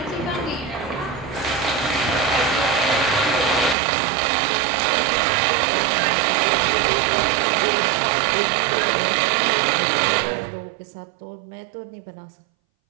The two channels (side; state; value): left; drops out; at 3.8 s